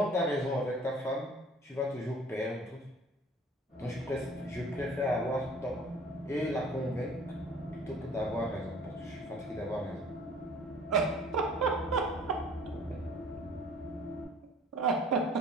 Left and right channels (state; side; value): normal; both; correlation 0.50